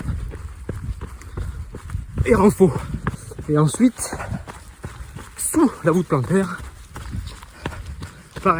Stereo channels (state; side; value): identical; both; correlation 1.00